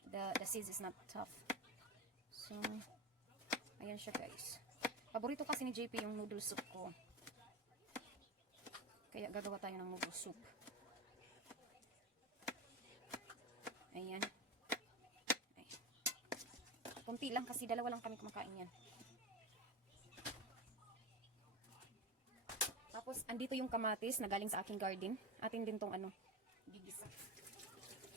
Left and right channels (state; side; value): normal; both; correlation 0.22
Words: The seeds is not tough. So, ayan siya guys. Paborito kasi ni JP yung noodle soup ko. Kaya gagawa tayo ng noodle soup. Ayan. Ay. Kunti lang kasi dalawa lang kami kumakain yan. Tapos, andito yung kamatis na galing sa aking garden. Atin din tong gigisa.